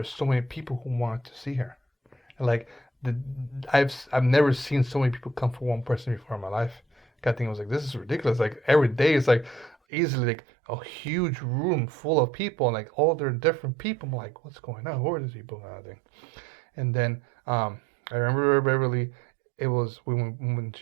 were so many people who wanted to see her. And like the I've never seen so many people come for one person before in my life. I think I was like, this is ridiculous. Like every day is like easily like a huge room full of people and like all their different people. I'm like, what's going on? Who are these people kind of thing? And then I remember Beverly. It was when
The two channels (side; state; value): left; drops out; at 9.8 s